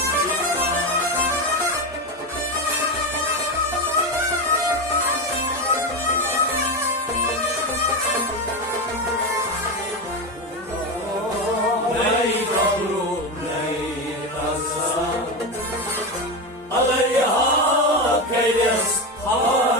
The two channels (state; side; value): normal; both; correlation 0.17